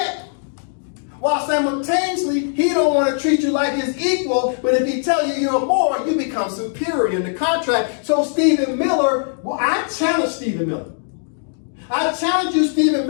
while simultaneously, he don't want to treat you like his equal, but if he tell you you're more, you become superior in the contract. So Stephen Miller, well, I challenge Stephen Miller. I challenge you, Stephen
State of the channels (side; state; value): right; silent; digital silence